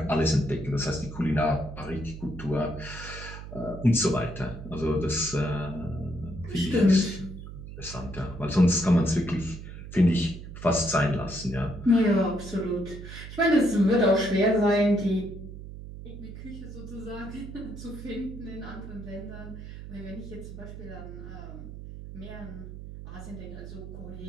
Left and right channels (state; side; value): noise; right; hum, 11 dB below the sound